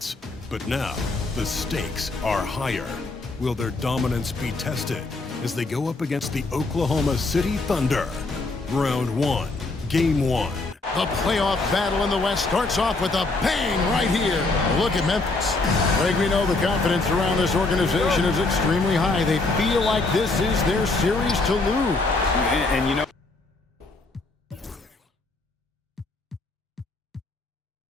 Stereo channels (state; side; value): quieter; right; 3.4 dB